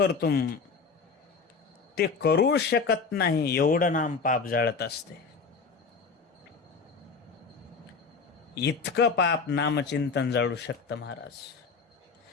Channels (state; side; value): quieter; right; 4.9 dB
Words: ते करू शकत नाही एवढं नाम पाप जाळत असते. इतकं पाप नामचिंतन जाळू शकतं महाराज.